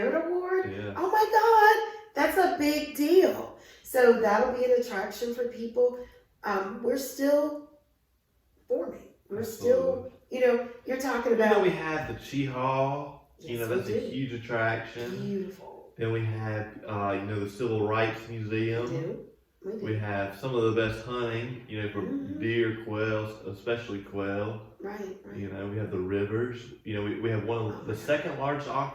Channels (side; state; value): both; identical; correlation 1.00